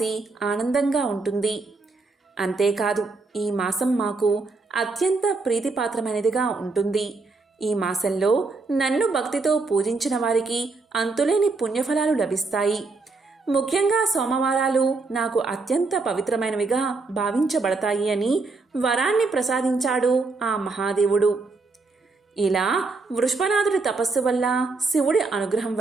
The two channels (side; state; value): left; quieter; 3.8 dB